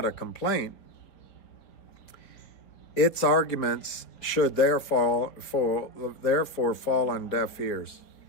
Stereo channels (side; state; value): right; late; 4.5 ms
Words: a complaint, its arguments should therefore fall on deaf ears.